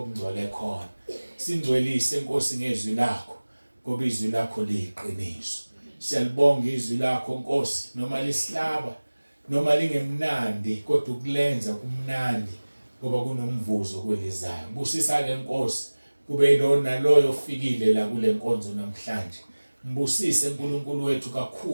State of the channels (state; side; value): inverted; both; correlation -1.00